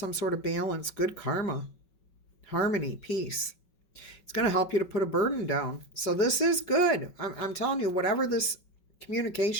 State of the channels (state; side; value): late; right; 5.3 ms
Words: sort of balance, good karma, harmony, peace. It's going to help you to put a burden down. So this is good. I'm telling you, whatever this